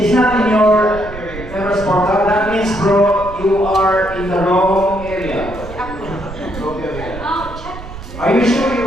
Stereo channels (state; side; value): noise; right; rumble, 13 dB below the sound